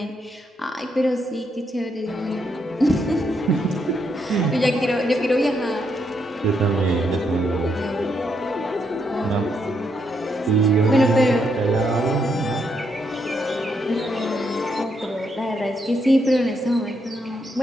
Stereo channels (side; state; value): both; normal; correlation 0.77